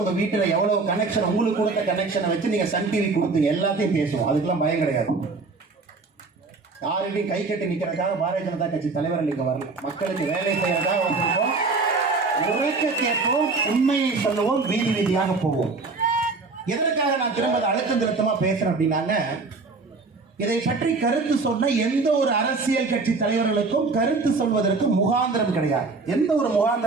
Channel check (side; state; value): left; quieter; 4.0 dB